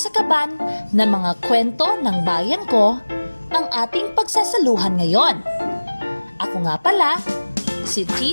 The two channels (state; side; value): inverted; both; correlation -1.00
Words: kaban ng mga kwento ng bayan ko ang ating pagsasaluhan ngayon. Ako nga pala, si